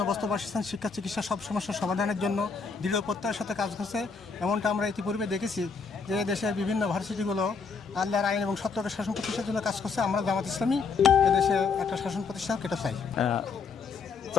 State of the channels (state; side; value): quieter; right; 5.2 dB